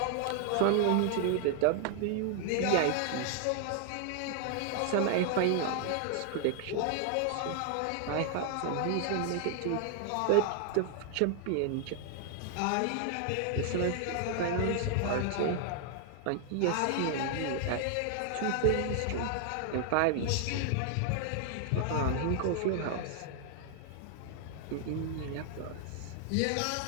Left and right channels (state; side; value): different; both; correlation 0.00